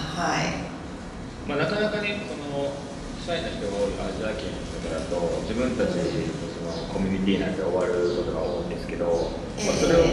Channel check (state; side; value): identical; both; correlation 1.00